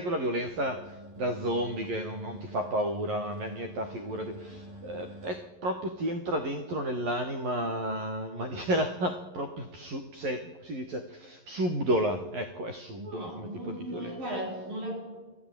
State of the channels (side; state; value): left; late; 11 ms